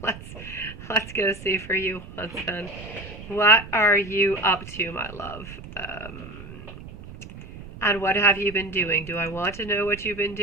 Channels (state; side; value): noise; right; rumble, 14 dB below the sound